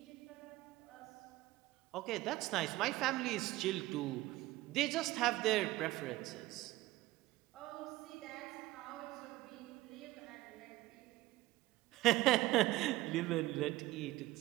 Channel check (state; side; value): quieter; left; 18.0 dB